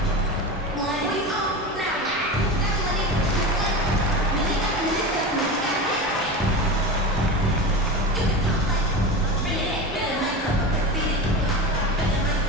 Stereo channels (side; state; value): both; normal; correlation 0.26